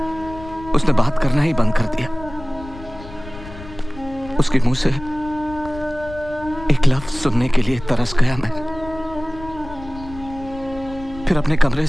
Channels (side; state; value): left; noise; rumble, 15 dB below the sound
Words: उसने बात करना ही बंद कर दिया। उसके मुंह से एक लफ्ज सुनने के लिए तरस गया मैं। फिर अपने कमरे